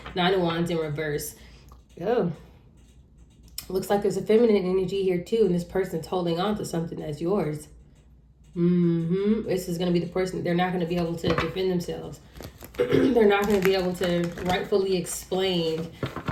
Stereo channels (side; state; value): both; identical; correlation 1.00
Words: Nine of Wands in reverse. Oh, looks like there's a feminine energy here too. And this person's holding on to something that's yours. This is going to be the person. They're not going to be able to defend themselves. They're not going to be able to rightfully explain